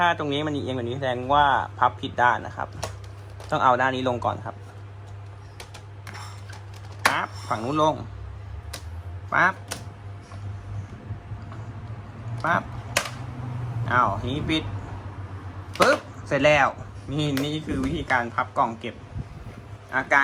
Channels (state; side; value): identical; both; correlation 1.00